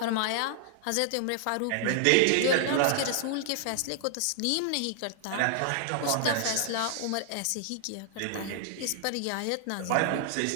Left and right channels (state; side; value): different; both; correlation 0.00